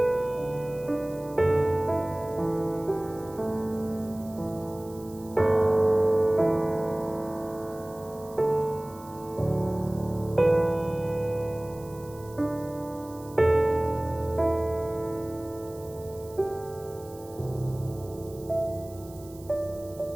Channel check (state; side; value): noise; right; hiss, 22 dB below the sound